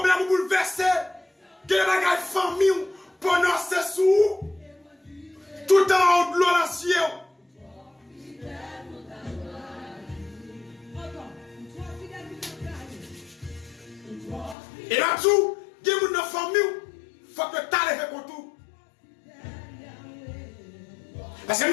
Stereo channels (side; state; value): right; drops out; at 14.6 s